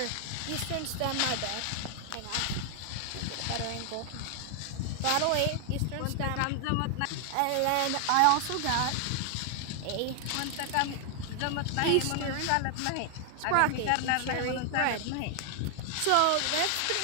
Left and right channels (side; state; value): both; different; correlation 0.00